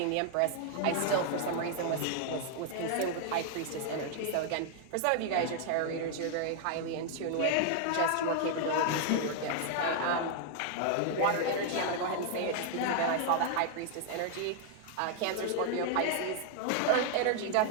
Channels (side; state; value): both; different; correlation 0.00